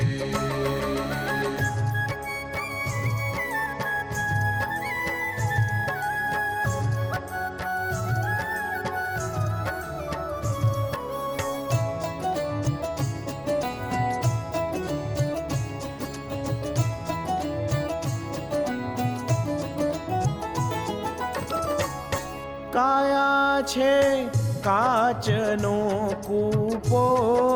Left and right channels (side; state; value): both; identical; correlation 1.00